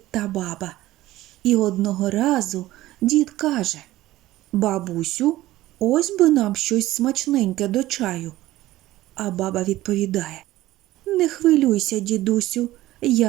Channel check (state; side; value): quieter; left; 16.2 dB